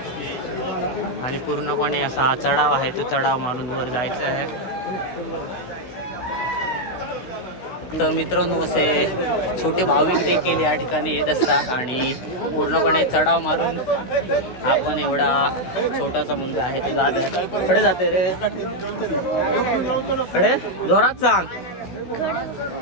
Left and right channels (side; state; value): right; late; 16 ms